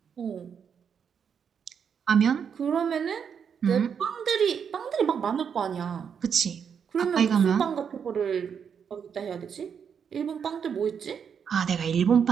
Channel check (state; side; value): quieter; left; 7.2 dB